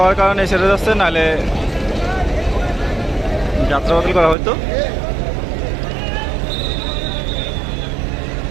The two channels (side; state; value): left; drops out; at 4.4 s